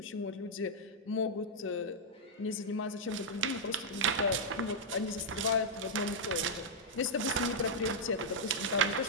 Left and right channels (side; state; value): both; normal; correlation -0.06